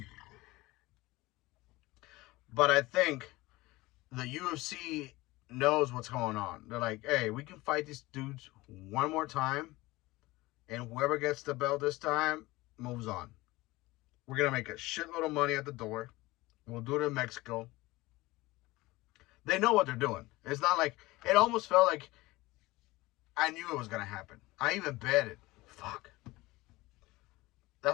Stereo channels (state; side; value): quieter; right; 20.2 dB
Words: but I think the UFC knows what's going on. They're like, hey, we can fight these dudes one more time, and whoever gets the belt this time moves on. We're gonna make a shitload of money at the door. We'll do it in Mexico. They know what they're doing. It's not like, it almost felt like I knew it was gonna happen. I even bet it. Fuck.